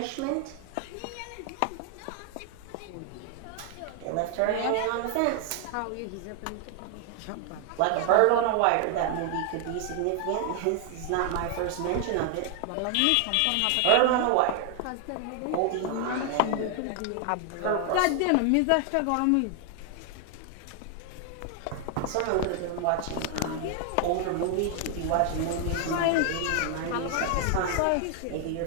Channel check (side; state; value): both; different; correlation 0.00